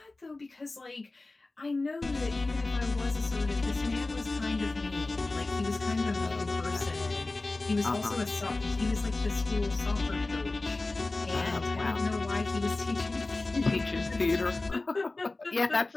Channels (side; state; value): right; quieter; 3.2 dB